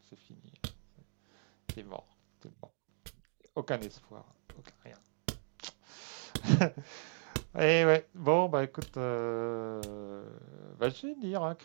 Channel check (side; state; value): left; silent; 53 dB below the other